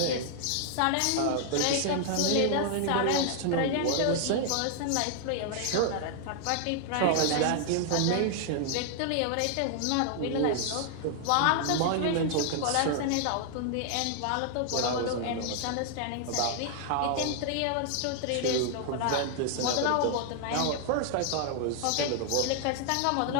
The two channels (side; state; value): both; different; correlation 0.00